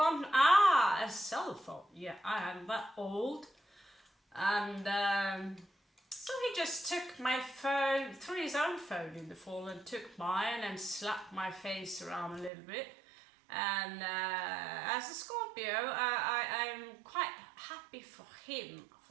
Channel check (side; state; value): left; drops out; at 12.5 s